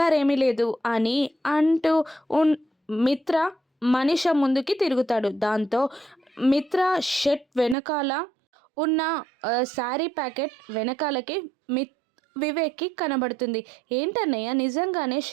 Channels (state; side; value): drops out; left; at 7.8 s